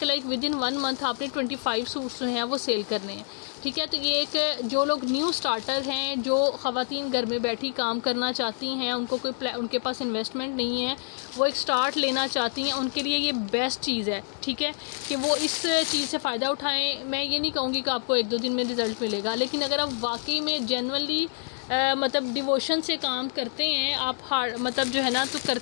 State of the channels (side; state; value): right; silent; digital silence